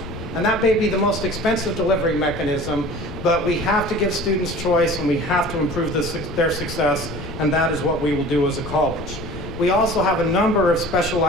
And that may be the most expensive delivery mechanism, but we have to give students choice, and we have to improve their success, and that is what we will do as a college. We also have a number of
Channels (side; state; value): left; noise; rumble, 11 dB below the sound